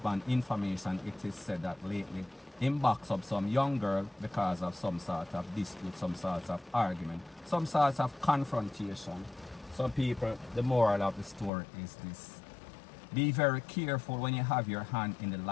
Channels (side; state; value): right; drops out; at 11.5 s